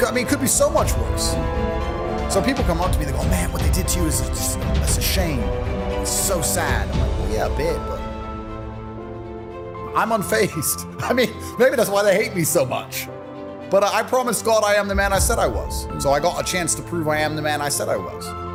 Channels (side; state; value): both; identical; correlation 1.00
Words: could be so much worse. So people come up to me, they go, man, what they did to you is just, it's a shame. It's so sad. I'm like, well, yeah, a bit, but I'm unfazed. I mean, maybe that's why they hate me so much. But I promised God I am the man I said I was. So I got a chance to prove I am the man I said I was.